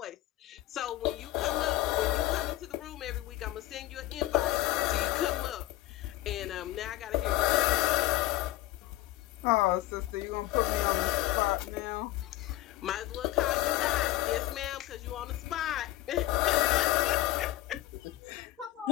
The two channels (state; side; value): quieter; right; 16.1 dB